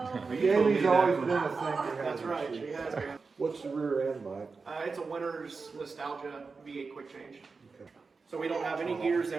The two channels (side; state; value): left; quieter; 4.5 dB